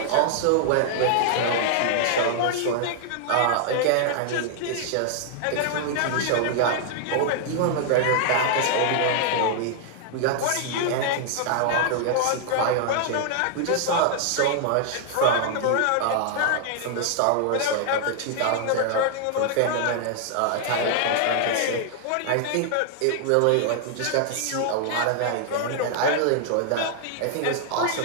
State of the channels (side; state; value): both; different; correlation -0.01